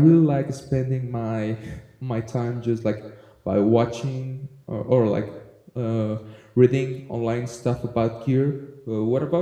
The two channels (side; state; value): both; identical; correlation 1.00